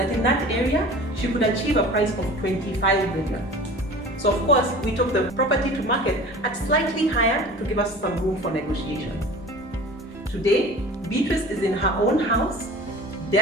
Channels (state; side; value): normal; both; correlation 0.41